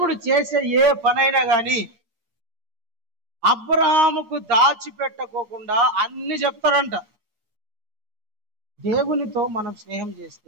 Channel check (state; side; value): late; left; 9.5 ms